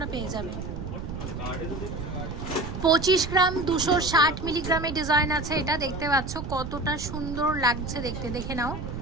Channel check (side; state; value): right; noise; rumble, 7 dB below the sound